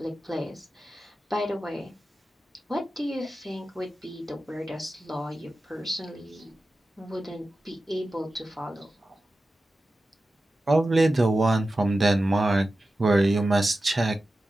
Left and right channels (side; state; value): both; normal; correlation 0.93